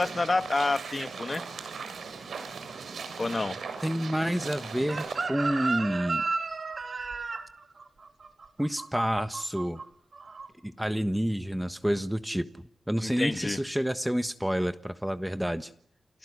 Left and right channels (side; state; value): both; normal; correlation 0.97